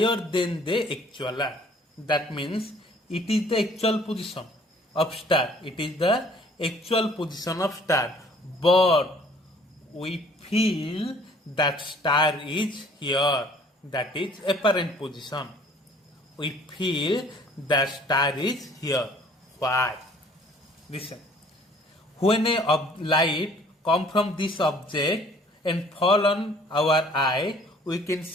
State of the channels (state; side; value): normal; both; correlation 0.55